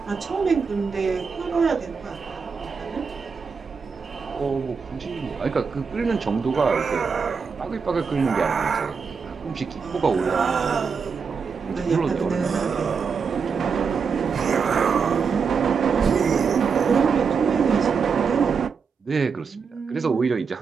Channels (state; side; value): quieter; left; 5.7 dB